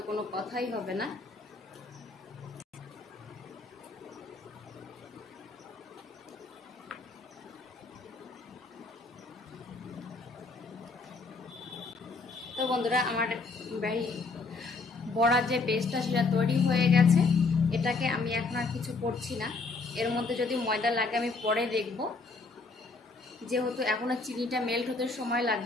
কোনো কথাই হবে না। তো বন্ধুরা, আমার বড়ার যে বেসটা সেটা তৈরি হয়ে গেছে। এটাকে আমি এখন আর কিছু করছি না। এর মধ্যে যদি ময়দা লাগে আমি পরে দেখব, যেহেতু এখনো চিনিটা মেল্ট হতে সময়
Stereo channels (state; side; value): quieter; right; 3.9 dB